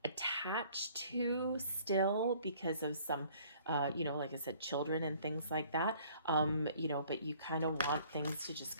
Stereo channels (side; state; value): both; inverted; correlation -0.56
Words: attached to still because of some, like I said, children and things like that, but you kind of want things to just